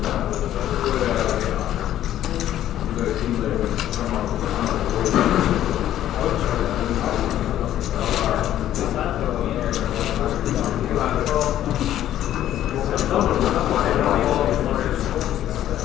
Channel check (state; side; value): quieter; right; 12.1 dB